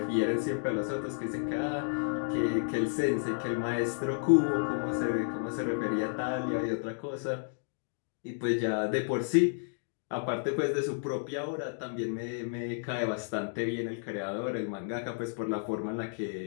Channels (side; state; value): right; silent; digital silence